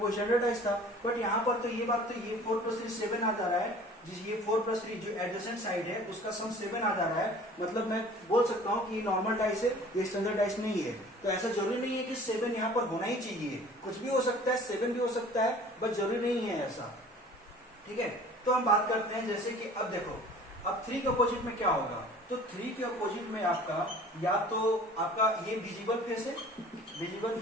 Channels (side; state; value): both; normal; correlation 0.47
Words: स्टैंडर्डाइज था। बट यहाँ पर तो ये बात तो ये 4 + 3 7 आ जा रहा है, जिस ये 4 + 3 जो एडजेसेंट साइड है उसका सम 7 आ जा रहा है। मतलब मैं बोल सकता हूँ कि ये नॉर्मल डाइस है, ये स्टैंडर्ड डाइस नहीं है। तो ऐसा जरूरी नहीं है कि 7 यहाँ पर होना ही चाहिए, कुछ भी हो सकता है, 7 भी हो सकता है, बट जरूरी नहीं है ऐसा, ठीक है। तो हम बात करते हैं, जैसे कि अब देखो, अब 3 के अपोजिट में क्या होगा, तो 3 के अपोजिट में आपका या तो आपका ये विजिबल फेस है, विजिबल